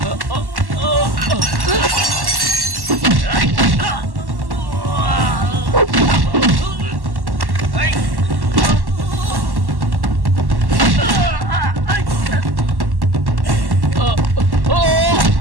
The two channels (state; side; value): late; left; 1.1 ms